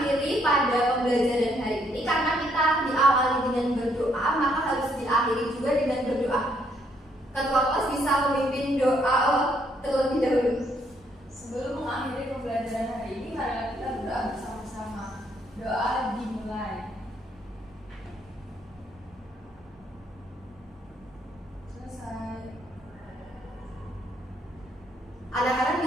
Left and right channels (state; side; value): normal; both; correlation 0.71